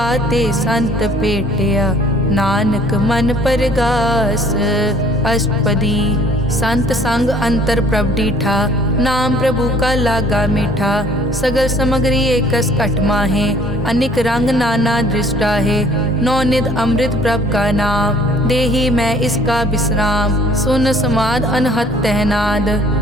ते संत पेटिया, नानक मन परगास। अष्टपदी संत संग अंतर प्रभ डीठा, नाम प्रभु का लागा मीठा। सगल समग्री एकस घट माहे, अनिक रंग नाना दृष्टा है। नौनिध अमृत प्रभ का नाम, देही मैं इसका विश्राम। सुन समाद अनहत तहनाद,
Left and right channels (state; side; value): normal; both; correlation 0.56